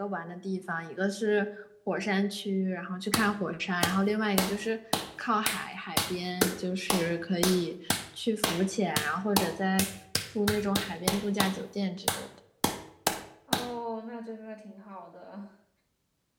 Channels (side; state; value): both; identical; correlation 1.00